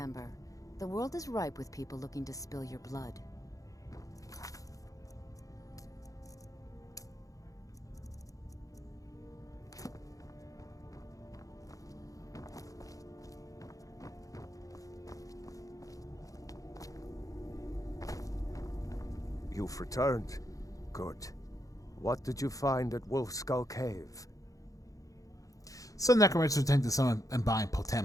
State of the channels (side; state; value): right; late; 0.17 ms